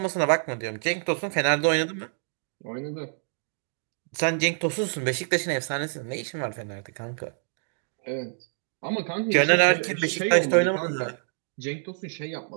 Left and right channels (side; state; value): left; silent; digital silence